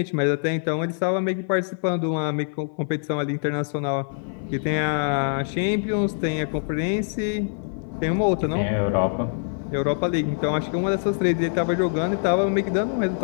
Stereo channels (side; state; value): right; silent; 55 dB below the other